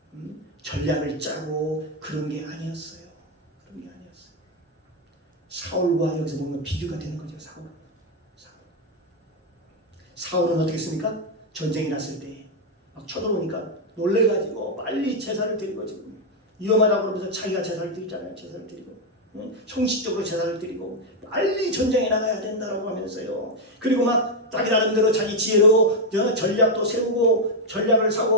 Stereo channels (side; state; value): both; normal; correlation 0.03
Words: 전략을 짜고 그런 게 아니었어요. 사울과 여기서 보면 비교가 되는 거죠. 사울은 어떻게 했습니까? 전쟁이 났을 때 막 쳐들어오니까 놀래가지고 빨리 제사를 드리고 지금 위험하다고 그러면서 자기가 제사를 드리잖아요. 제사를 드리고 형식적으로 제사를 드리고 빨리 전쟁에 나가야 된다고 하면서요. 그리고 막 자기 나름대로 자기 지혜로 전략도 세우고 전략을